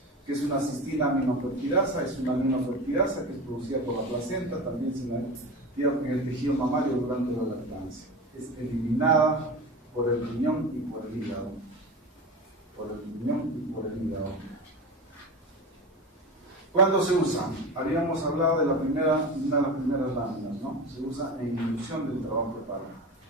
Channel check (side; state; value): both; normal; correlation 0.28